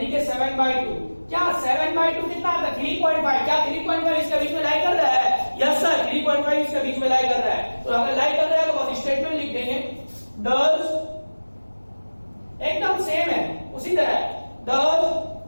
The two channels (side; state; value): both; inverted; correlation -1.00